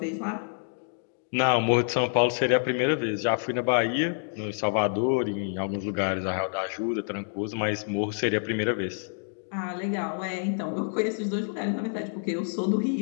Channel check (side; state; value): right; silent; digital silence